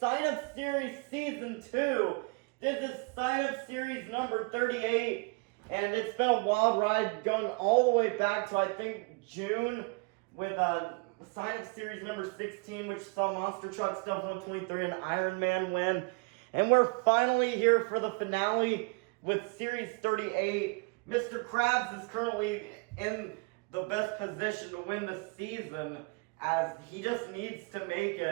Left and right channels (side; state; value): left; quieter; 30.6 dB